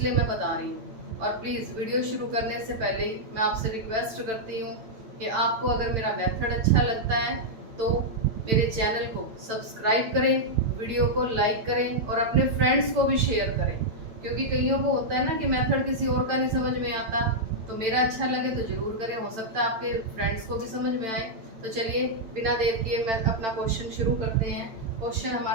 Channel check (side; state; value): left; late; 9.0 ms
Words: मैं बता रही हूँ। और प्लीज़ वीडियो शुरू करने से पहले ही मैं आपसे रिक्वेस्ट करती हूँ कि आपको अगर मेरा मेथड अच्छा लगता है तो मेरे चैनल को सब्सक्राइब करें, वीडियो को लाइक करें और अपने फ्रेंड्स को भी शेयर करें, क्योंकि कईयों को होता है ना कि मेथड किसी और का नहीं समझ में आता, तो मेरा अच्छा लगे तो जरूर करें, हो सकता है आपके फ्रेंड्स को भी समझ में आए। तो चलिए बिना देर किए मैं अपना क्वेश्चन शुरू करते हैं। क्वेश्चन